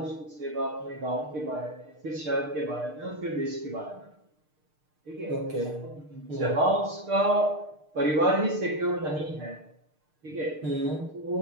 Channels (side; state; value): left; late; 6.6 ms